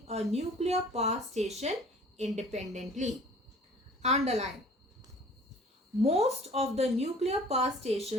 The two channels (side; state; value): both; normal; correlation 0.49